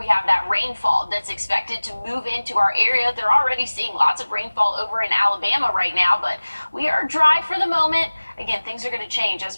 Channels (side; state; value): both; inverted; correlation -1.00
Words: have that rainfall that's expected to move into our area. They're already seeing lots of rainfall over in Alabama right now, but we are dry for the moment. Again, things are going to change